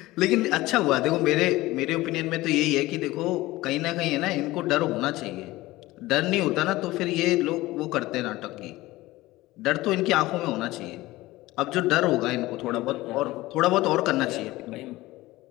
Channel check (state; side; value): quieter; right; 18.5 dB